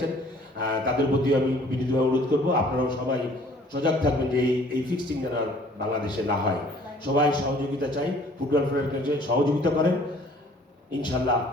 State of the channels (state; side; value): normal; both; correlation 0.55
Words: তাদের প্রতি আমি বিনীতভাবে অনুরোধ করবো আপনারাও সবাই সজাগ থাকবেন যে এই ফিক্সিং যেন বাংলাদেশে না হয়। সবাই সহযোগিতা চাই, ফুটবল ফেডারেশন সহযোগিতা করেন, ইনশাল্লাহ